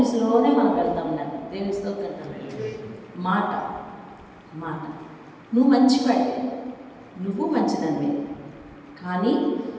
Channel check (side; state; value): both; identical; correlation 1.00